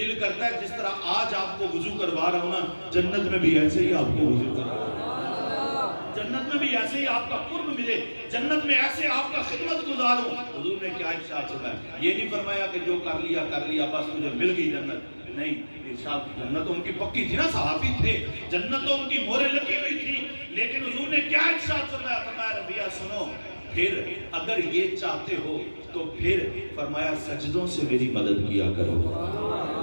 کرتا ہے جس طرح آج آپ کو وضو کروا رہا ہوں نا, جنت میں بھی ایسے ہی آپ کو وضو کروا رہا ہوں, جنت میں بھی ایسے ہی آپ کا قرب ملے, جنت میں ایسے آپ کا خدمت گزاروں. حضور نے کیا ارشاد فرمایا؟ یہ نہیں فرمایا کہ جو کر لیا بس مجھے مل گئی جنت. نہیں, ارشاد جنت تو ان کی پکی تھی نا, صحابی تھے, جنت تو ان کی مورے لگی ہوئی تھی. لیکن حضور نے کیا ارشاد فرمایا؟ فرمایا ربیعہ سنو, پھر اگر یہ چاہتے ہو تو پھر فرمایا سجدوں سے میری مدد کیا کرو.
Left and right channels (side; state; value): both; inverted; correlation -1.00